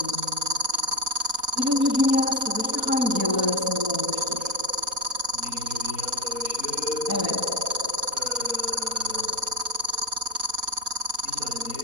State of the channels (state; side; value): late; left; 4.2 ms